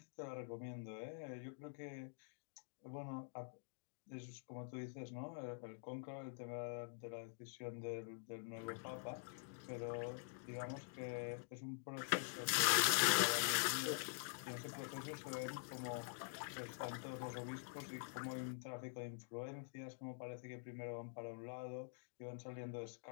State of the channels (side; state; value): right; silent; digital silence